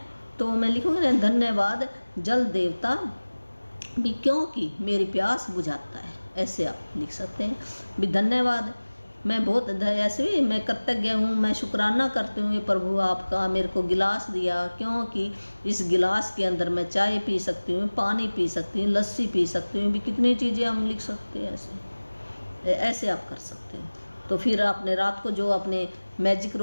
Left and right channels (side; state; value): both; inverted; correlation -1.00